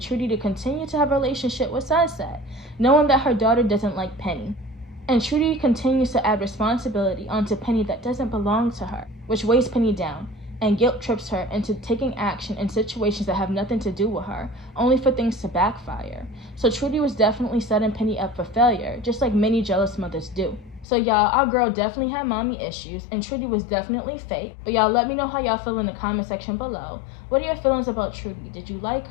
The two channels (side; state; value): right; drops out; at 20.9 s